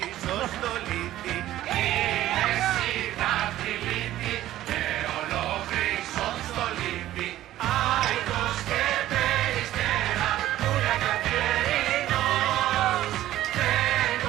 πίσω στο λίτη. Είμαι εσύ δάχτυλίτη, και ολόκληρω στο λίτη. Άϊκος και περιστέρα, πουλια καθιερινός.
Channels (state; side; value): quieter; left; 14.0 dB